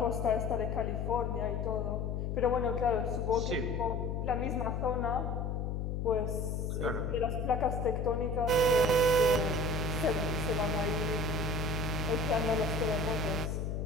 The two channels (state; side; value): noise; left; hum, 1 dB below the sound